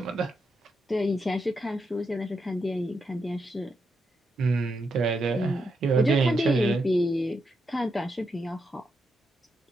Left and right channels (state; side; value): normal; both; correlation 0.83